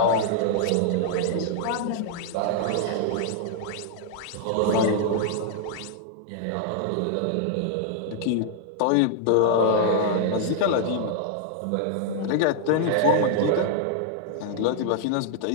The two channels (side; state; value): both; different; correlation -0.01